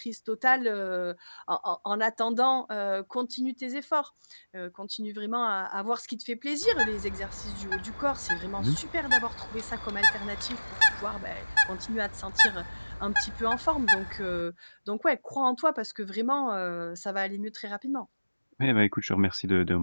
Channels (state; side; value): inverted; both; correlation -1.00